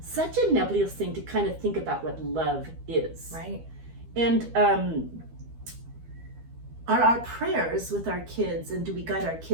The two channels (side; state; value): left; late; 12 ms